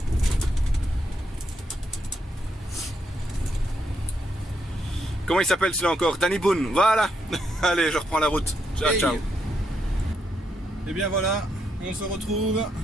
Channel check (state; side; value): normal; both; correlation 0.79